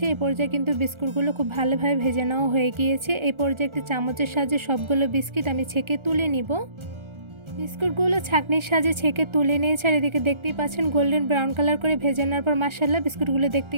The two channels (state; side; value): late; left; 1.3 ms